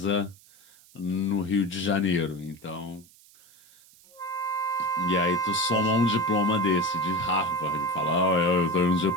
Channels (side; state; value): right; noise; hiss, 26 dB below the sound